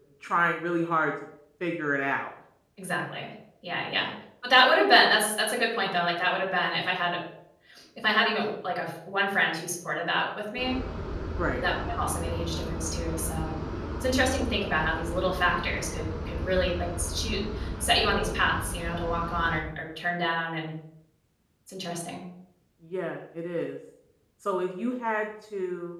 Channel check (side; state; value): both; identical; correlation 1.00